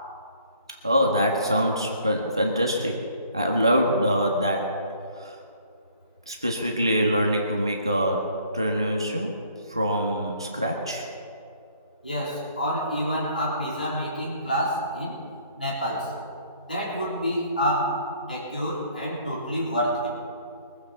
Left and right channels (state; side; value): inverted; both; correlation -0.59